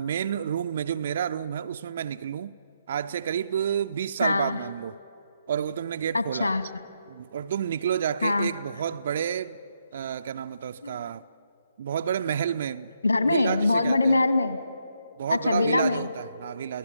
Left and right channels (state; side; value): inverted; both; correlation -0.78